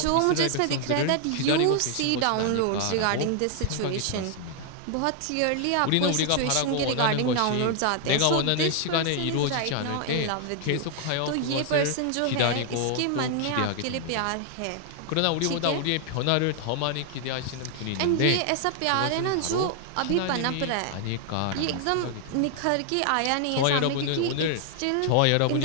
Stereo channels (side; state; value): both; different; correlation 0.00